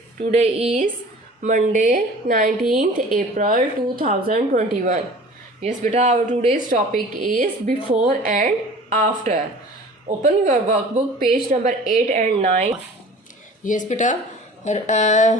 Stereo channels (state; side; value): normal; both; correlation 0.44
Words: Today is Monday, 19th April 2021. Yes, beta. Our today's topic is before and after. Open your workbook, page number 8 and 9. Yes, beta.